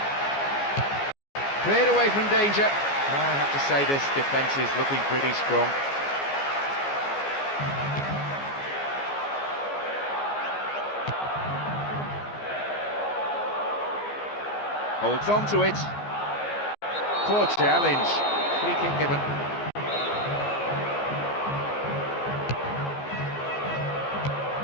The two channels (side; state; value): right; late; 14 ms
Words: Cleared away from danger. I have to say this defence is looking pretty strong. Holds on to it. Poor challenge. Free kick given.